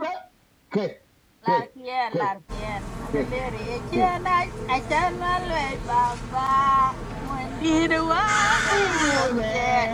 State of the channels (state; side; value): identical; both; correlation 1.00